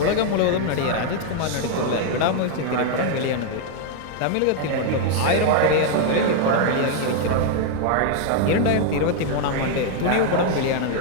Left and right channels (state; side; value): different; both; correlation 0.00